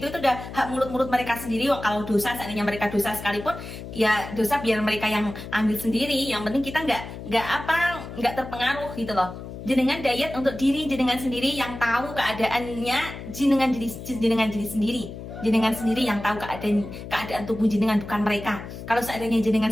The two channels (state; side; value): noise; left; hum, 11 dB below the sound